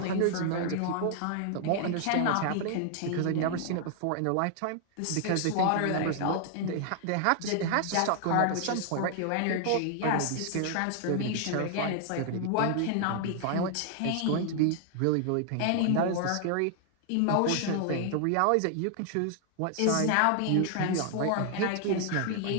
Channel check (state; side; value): different; both; correlation 0.00